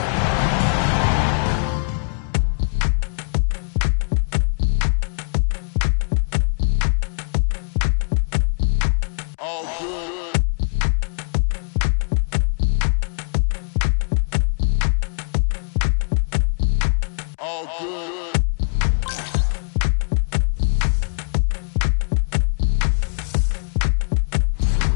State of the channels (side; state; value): right; silent; digital silence